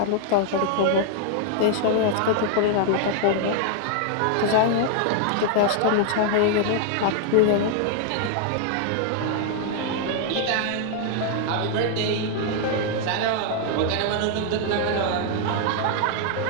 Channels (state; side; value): different; both; correlation 0.00